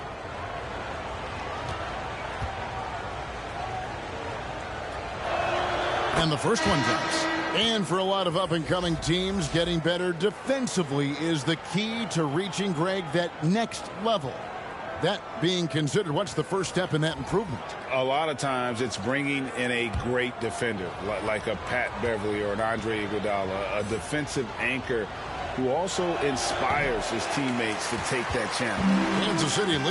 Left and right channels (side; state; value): both; identical; correlation 1.00